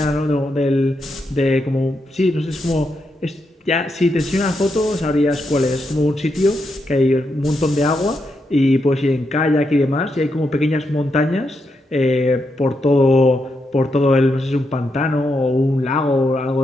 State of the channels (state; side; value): normal; both; correlation 0.83